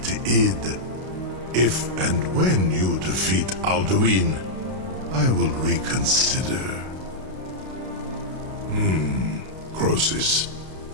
id. If and when you defeat Alduin, I will reconsider. Croesus.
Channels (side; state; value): left; late; 32 ms